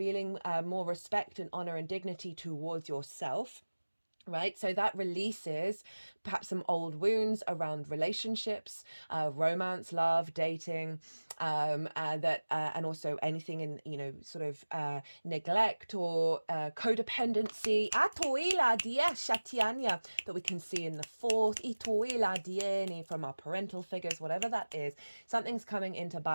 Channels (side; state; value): both; inverted; correlation -1.00